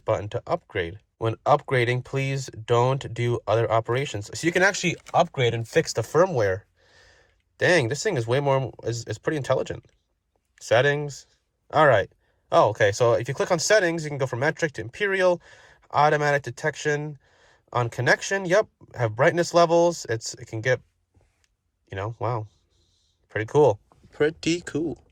to upgrade. When upgrading, please don't do other operations. So you can actually upgrade and fix the firmware. Dang, this thing is way more, is pretty intelligent. Settings. All right. Oh, okay. So if you click on settings, you can go from metric to imperial, automatic detection on connection. Yep. Have brightness levels. It can get, you know, wow. Pretty cool. Pretty cool.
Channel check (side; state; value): both; identical; correlation 1.00